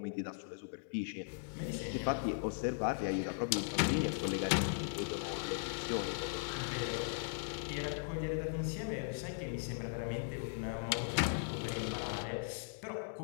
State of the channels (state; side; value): silent; right; 52 dB below the other